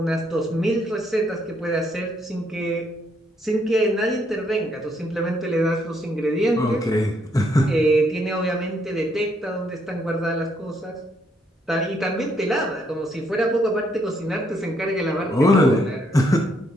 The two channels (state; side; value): normal; both; correlation 0.73